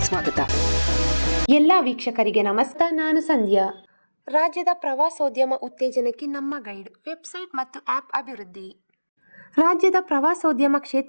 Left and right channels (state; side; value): inverted; both; correlation -1.00